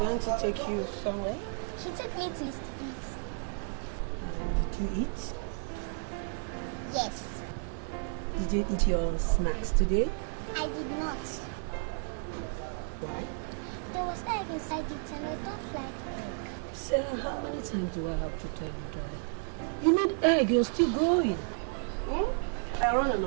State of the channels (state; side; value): silent; left; 56 dB below the other